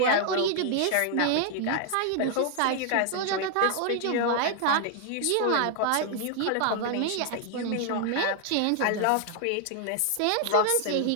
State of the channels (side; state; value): both; different; correlation 0.00